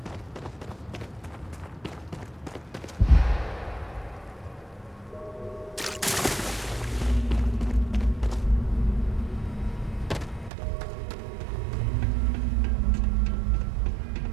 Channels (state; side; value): drops out; left; at 10.5 s